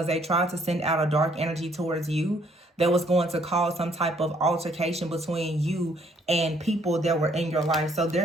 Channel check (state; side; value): normal; both; correlation 0.66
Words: they tried to send out a dark energy towards you that was going to cause some type of altercation between you and people that were in your life. So